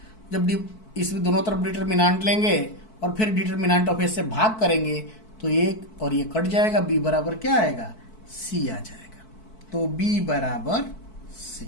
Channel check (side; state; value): right; late; 4.6 ms